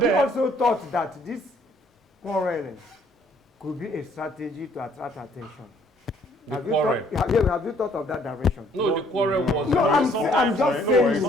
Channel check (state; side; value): normal; both; correlation 0.62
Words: you then- also thought that this quarreling could be a strategy to attract attention? The Have you, quarrel. thought, have you thought of that direction? No, the quarrel was. No, I'm Sometimes just it's